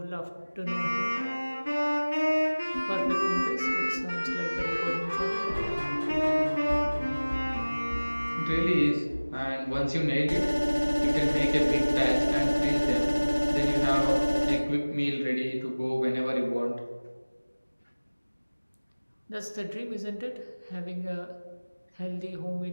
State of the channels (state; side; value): inverted; both; correlation -1.00